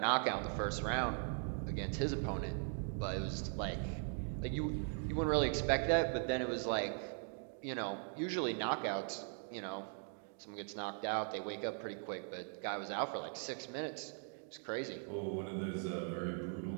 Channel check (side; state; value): left; silent; 51 dB below the other